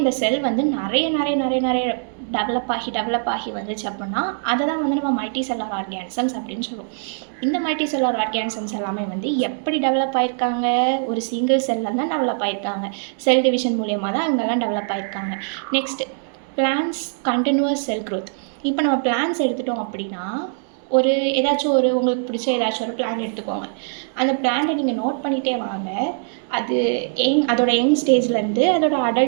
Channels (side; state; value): left; silent; digital silence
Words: செல் வந்து நிறைய டெவலப் ஆகி வந்துச்சு அப்படின்னா அதை தான் வந்து நம்ம மல்டி செல்லார் ஆர்கானிசம்ஸ் அப்படின்னு சொல்லுவோம். இந்த மல்டி செல்லார் ஆர்கானிசம்ஸ் எல்லாமே வந்து எப்படி டெவலப் ஆகிருக்காங்க? ஒரு சிங்கிள் செல்லில் தான் டெவலப் ஆகிருக்காங்க. செல் டிவிஷன் மூலியமாக தான் இவங்கெல்லாம் டெவலப் ஆகிருக்காங்க. Next, plants continues cell growth. இப்போ நம்ம பிளான்ஸ் எடுத்துட்டோம் அப்படின்னா ஏதாச்சும் உங்களுக்கு பிடிச்ச ஏதாச்சும் ஒரு பிளான் எடுத்துக்கோங்க. அந்த பிளானை நீங்கள் நோட் பண்ணிகிட்டே வாங்க. அது அதோட யங் ஸ்டேஜ்லேருந்து அதோட